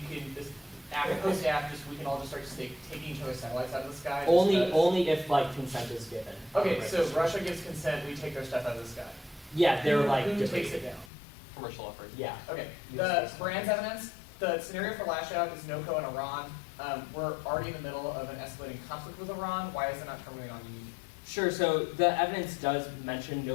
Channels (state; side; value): drops out; right; at 11.1 s